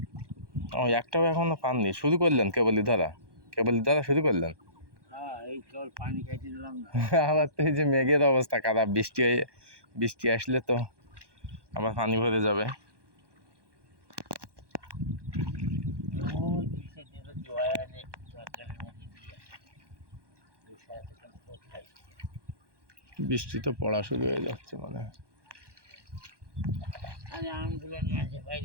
ও একটাও এখনো পাননি, শুরু করলেন কেবলই ধরা শুরু করলেন। এই কেবল পানি খাইতে দিলাম না। আবার তো এই যে মেঘের অবস্থা খারাপ, বৃষ্টি আসলে তো আবার পানি ভরে যাবে। বৃষ্টি তো পড়া শুরু হয়ে যাচ্ছে মানে। আমগুলো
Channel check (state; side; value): late; left; 1.2 ms